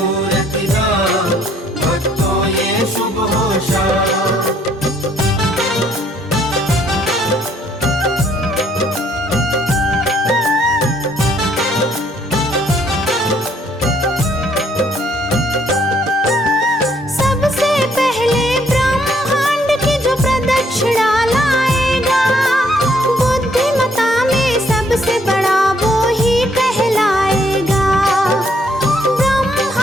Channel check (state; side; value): normal; both; correlation 0.66